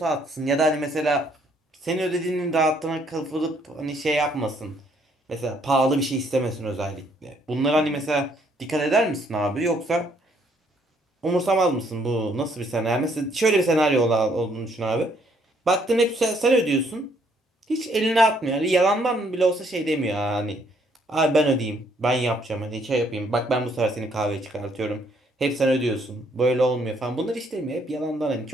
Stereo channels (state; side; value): normal; both; correlation 0.67